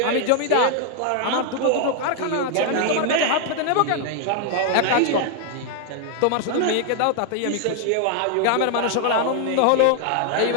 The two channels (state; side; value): different; both; correlation 0.00